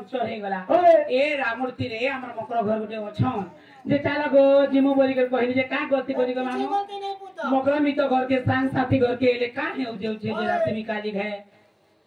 हे गला ए रामुर तीरे हमर मकर घर गुटे अछन जे चाला गो जिमु बोली कर कहली जे का गति करी गो मामू मकर मी तो घर के संग साथी घर के ले का हेउ जेउ छे जे राती मी काली घे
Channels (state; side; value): identical; both; correlation 1.00